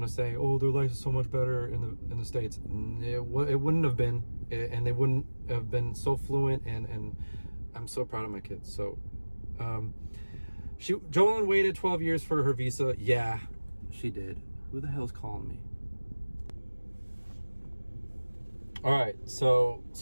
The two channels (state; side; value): inverted; both; correlation -1.00